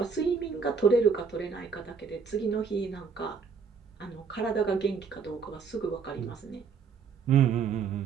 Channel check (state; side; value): quieter; left; 5.8 dB